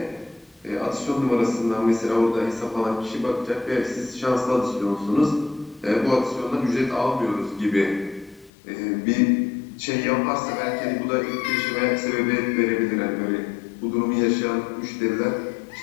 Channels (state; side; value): drops out; right; at 8.5 s